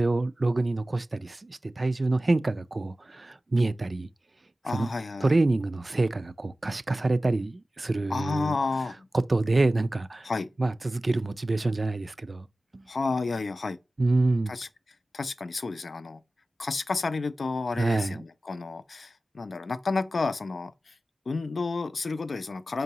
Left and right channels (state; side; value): normal; both; correlation 0.95